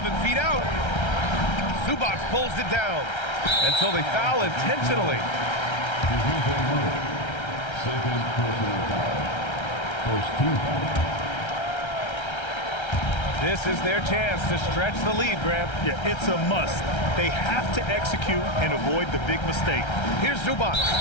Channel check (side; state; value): right; late; 1.3 ms